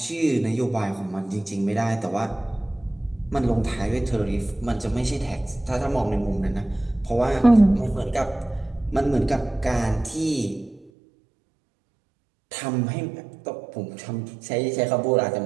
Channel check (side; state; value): left; drops out; at 10.9 s